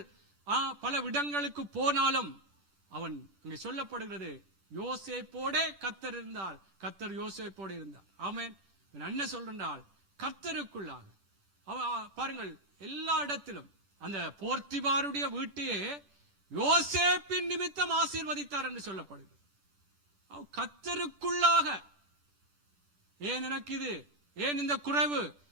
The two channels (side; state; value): left; late; 10 ms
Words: பல இடங்களுக்கு போனாலும் அவன் இங்கே சொல்லப்படுகிறது, யோசேப்போடே கர்த்தர் இருந்தார், கர்த்தர் யோசேப்போடு இருந்தார். ஆமென். என்ன சொல்றால், கர்த்தருக்குள்ளாக பாருங்கள், எல்லா இடத்திலும் அந்த போர்த்திபாருடைய வீட்டையே யோசேப்பின் நிமித்தம் ஆசீர்வதித்தார் என்று சொல்லப்படுகிறது. கர்த்தருக்குள்ளாக ஏன் எனக்கு இது, ஏன் இந்த குறைவு,